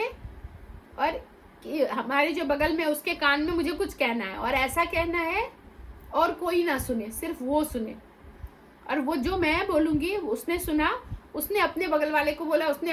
और हमारे जो बगल में उसके कान में मुझे कुछ कहना है और ऐसा कहना है और कोई ना सुने, सिर्फ वो सुने, और वो जो मैं बोलूँगी उसने सुना, उसने अपने बगल वाले को बोला, उसने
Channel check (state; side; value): identical; both; correlation 1.00